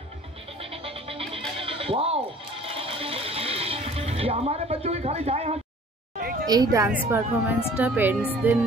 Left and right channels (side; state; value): both; normal; correlation 0.50